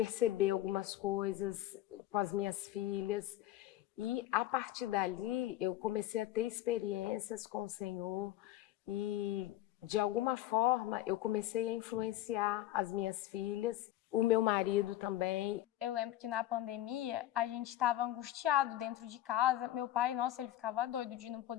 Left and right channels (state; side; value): quieter; right; 14.2 dB